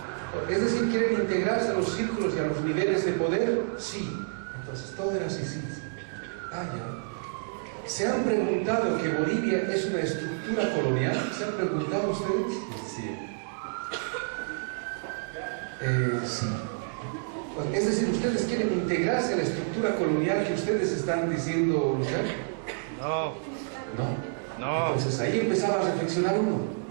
Es decir, ¿quieren integrarse a los círculos y a los niveles de poder? Sí. Entonces todo era así, sí. Ah, ya. ¿Se han preguntado que Bolivia es una estructura colonial? ¿Se han preguntado ustedes? Sí. Sí. Es decir, ¿ustedes quieren integrarse a la estructura colonial que ustedes están diciendo luchar? No. No. Entonces ahí empezaba a reflexionar uno.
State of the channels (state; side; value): silent; left; digital silence